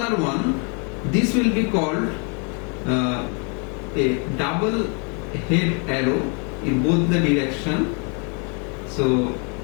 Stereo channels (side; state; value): right; quieter; 36.4 dB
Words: one. This will be called a double head arrow in both the direction. So